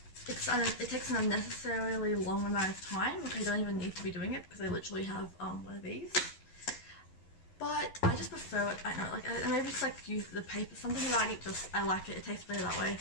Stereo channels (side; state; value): right; late; 11 ms